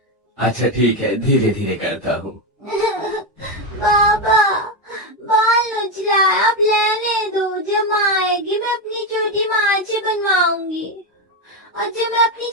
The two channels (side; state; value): both; normal; correlation 0.09